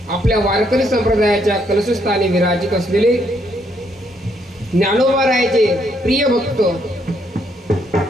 आपल्या वारकरी संप्रदायाच्या कलशस्थानी विराजित असलेले ज्ञानोबारायाचे प्रिय भक्त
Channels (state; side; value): normal; both; correlation 0.73